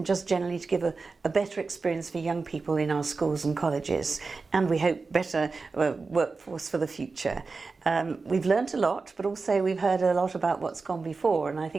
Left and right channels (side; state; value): left; quieter; 4.2 dB